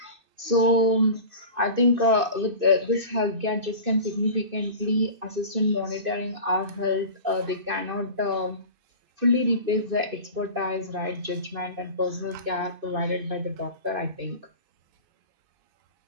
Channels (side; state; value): left; late; 2.5 ms